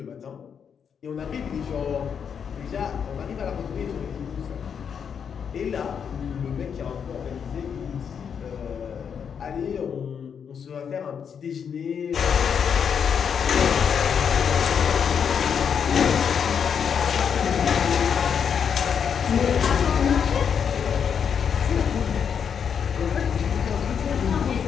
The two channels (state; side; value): quieter; right; 7.3 dB